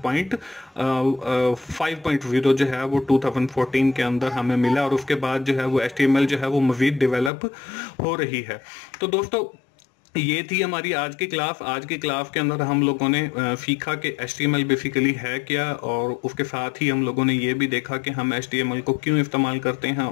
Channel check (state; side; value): drops out; right; at 7.3 s